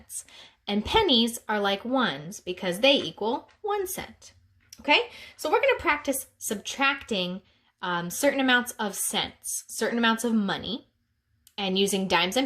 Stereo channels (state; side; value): identical; both; correlation 1.00